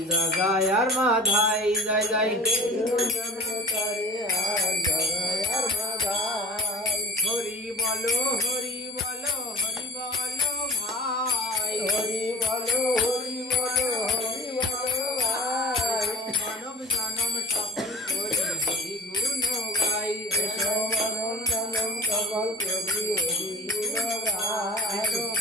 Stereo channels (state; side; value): normal; both; correlation 0.38